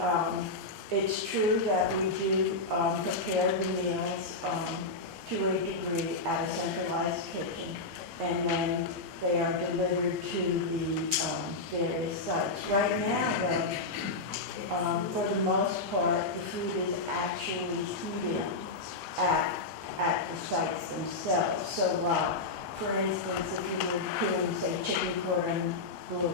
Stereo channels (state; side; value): quieter; right; 3.3 dB